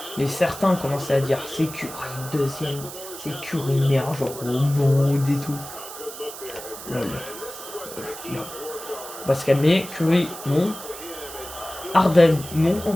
mais certains commençaient à dire, c'est Curry, deuxième, c'est Curry, meilleur joueur au monde et tout. Lol. Lol. On va se calmer. Curry, non. Harden, non.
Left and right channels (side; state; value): right; noise; hiss, 12 dB below the sound